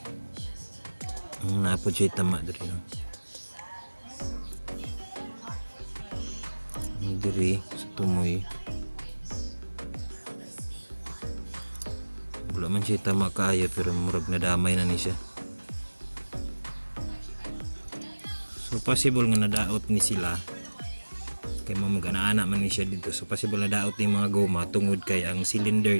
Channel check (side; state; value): both; inverted; correlation -1.00